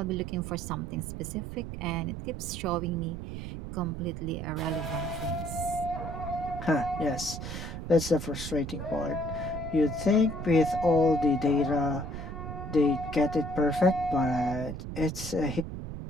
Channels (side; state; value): right; noise; rumble, 7 dB below the sound